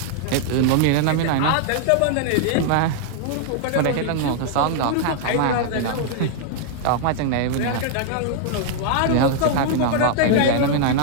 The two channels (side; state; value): both; different; correlation 0.00